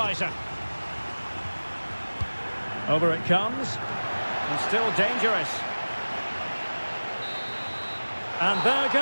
Over it comes, and still dangerous. And there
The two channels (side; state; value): both; inverted; correlation -1.00